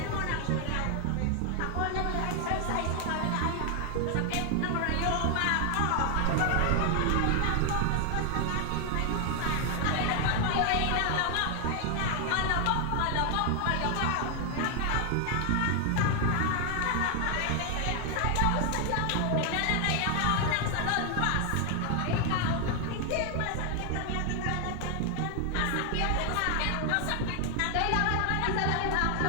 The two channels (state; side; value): different; both; correlation 0.00